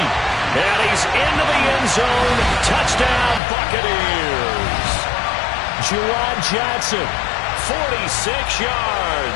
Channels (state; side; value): drops out; right; at 3.4 s